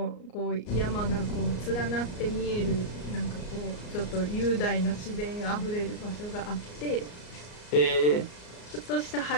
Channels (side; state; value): right; late; 34 ms